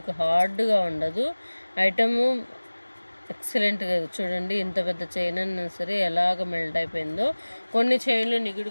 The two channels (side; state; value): both; inverted; correlation -1.00